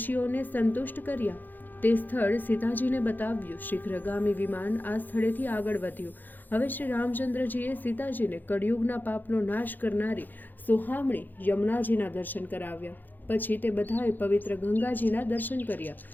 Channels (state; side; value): late; right; 0.087 ms